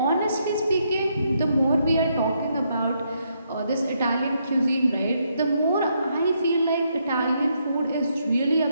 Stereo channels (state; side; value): inverted; both; correlation -0.76